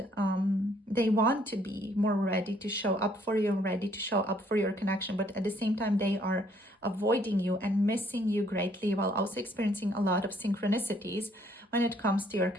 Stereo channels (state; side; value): normal; both; correlation 0.65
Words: they want to be more ready to show up for you, ready to show up for your connection. But at the same time, they are avoiding you and missing you greatly, while also experiencing a lot of synchronicities when it comes to your